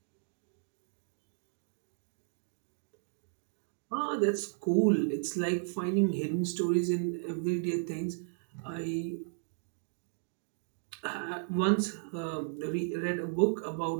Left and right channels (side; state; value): left; silent; digital silence